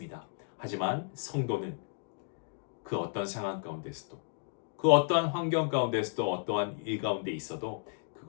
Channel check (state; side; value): silent; right; digital silence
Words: 하지만 성도는 그 어떤 상황 가운데서도 그 어떠한 환경 가운데서도 어떠한 일 가운데 있어도